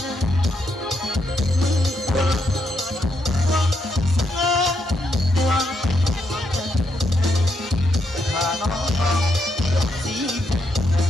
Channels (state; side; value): normal; both; correlation 0.80